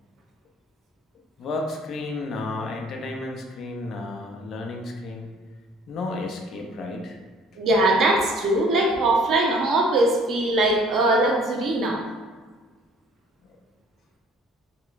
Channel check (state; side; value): normal; both; correlation 0.55